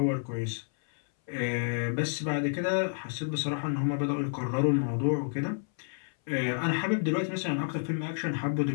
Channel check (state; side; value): silent; right; 58 dB below the other